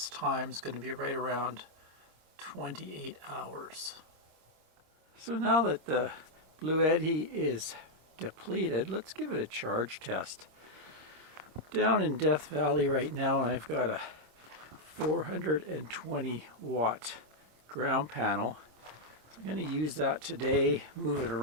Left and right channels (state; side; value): late; left; 26 ms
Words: time is going to be right around 28 hours. So now that the Bluetti is depleted, let's give it a charge test. Down in Death Valley right now, I've got a 420 watt ground panel. So I'm going to use that today, move it